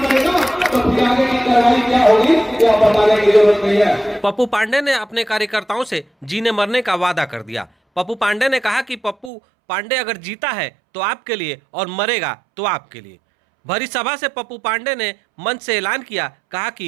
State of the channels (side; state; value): left; drops out; at 9.3 s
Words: तो फिर आगे की कार्रवाई क्या होगी यह बताने की जरूरत नहीं है। पप्पू पांडे ने अपने कार्यकर्ताओं से जीने मरने का वादा कर दिया। पप्पू पांडे ने कहा कि पप्पू पांडे अगर जीता है तो आपके लिए और मरेगा तो आपके लिए। भरी सभा से पप्पू पांडे ने मंच से ऐलान किया, कहा